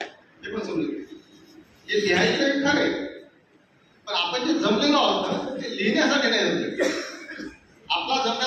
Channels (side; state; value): both; identical; correlation 1.00